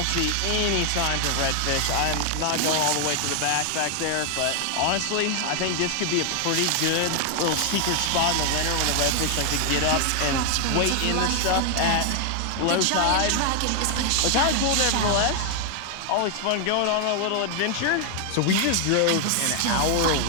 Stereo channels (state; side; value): different; both; correlation 0.00